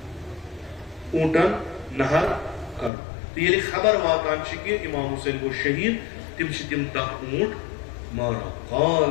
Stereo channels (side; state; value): right; drops out; at 2.9 s